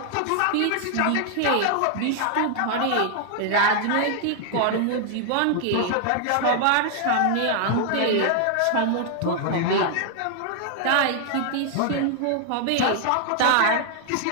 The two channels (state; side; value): different; both; correlation 0.00